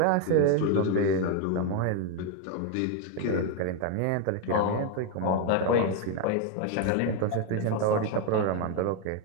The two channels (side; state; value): both; different; correlation 0.01